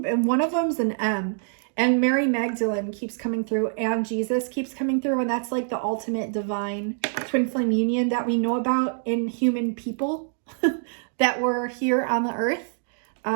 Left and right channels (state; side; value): silent; left; digital silence